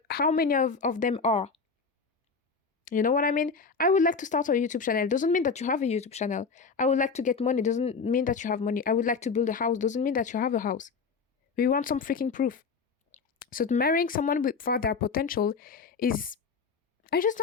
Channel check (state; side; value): quieter; right; 5.0 dB